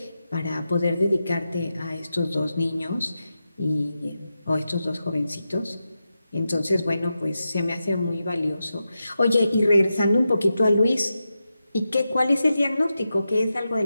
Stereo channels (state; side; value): inverted; both; correlation -0.90